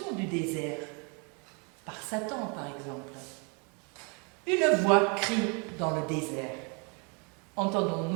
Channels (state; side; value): quieter; left; 34.4 dB